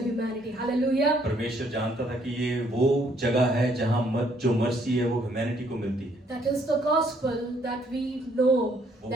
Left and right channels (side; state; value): both; normal; correlation 0.67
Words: humanity. Hallelujah. परमेश्वर जानता था कि ये वो जगह है जहाँ जो मर्सी है वो ह्यूमैनिटी को मिलती है। That is the gospel that we know,